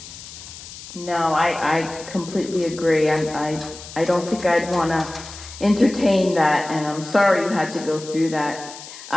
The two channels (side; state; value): left; noise; hiss, 14 dB below the sound